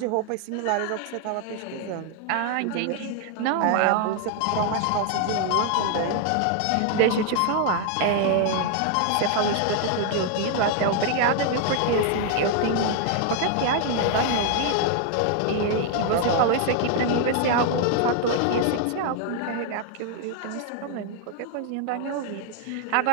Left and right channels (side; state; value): both; different; correlation 0.00